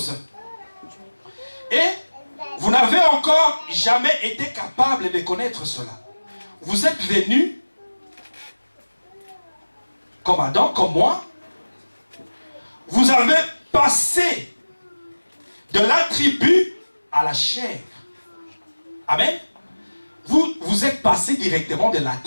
Et vous n'avez encore jamais été capable de connaître cela. Vous êtes venus, comme Adam, comme moi. Vous avez passé de l'attribut à la chair. Amen. Vous êtes passé directement de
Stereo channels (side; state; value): both; inverted; correlation -1.00